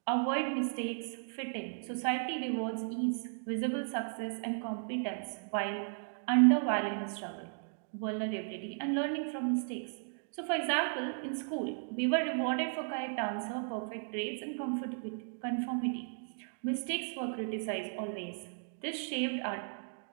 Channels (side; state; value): left; silent; digital silence